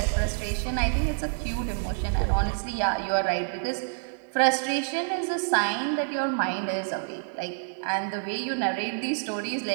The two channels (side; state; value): left; silent; digital silence